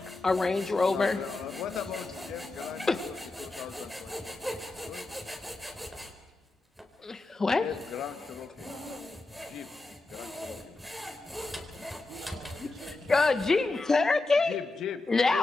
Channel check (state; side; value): quieter; right; 3.3 dB